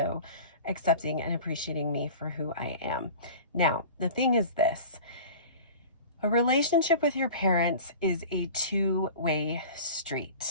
accepting and appreciating me for who I am. Now, the thing is this: a relationship with your parents is a two-way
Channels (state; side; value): inverted; both; correlation -0.38